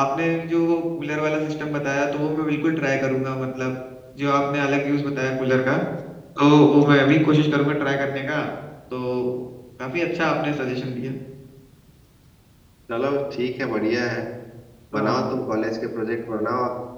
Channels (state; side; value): identical; both; correlation 1.00